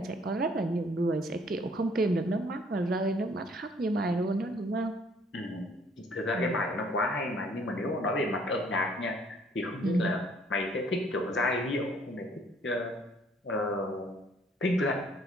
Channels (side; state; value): both; normal; correlation 0.61